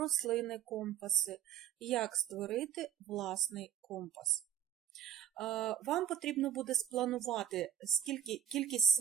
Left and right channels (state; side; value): quieter; left; 9.7 dB